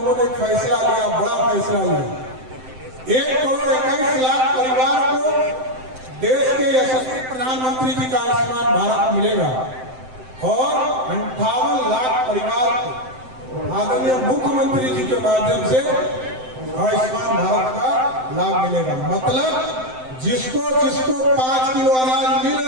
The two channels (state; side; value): late; left; 7.8 ms